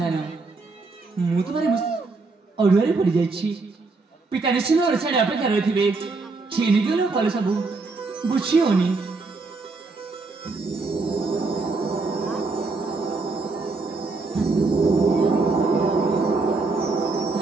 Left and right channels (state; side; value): quieter; left; 3.8 dB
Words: मु तुम्हारे अड़ुआ पड़ जा पिता निश्चित ओडाड़े अपेक्षा रही थे छीनिक फल सब बुझी होनी